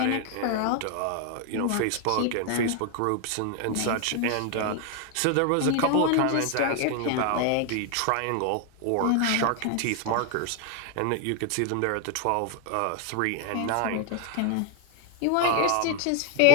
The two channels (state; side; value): different; both; correlation 0.01